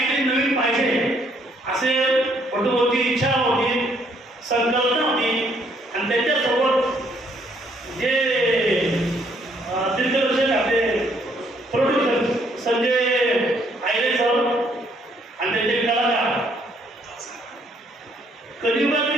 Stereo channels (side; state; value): both; normal; correlation 0.68